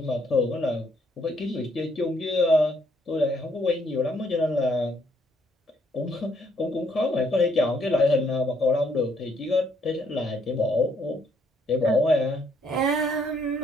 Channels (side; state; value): both; normal; correlation 0.69